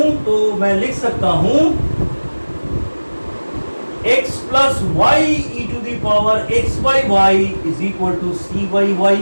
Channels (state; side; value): inverted; both; correlation -1.00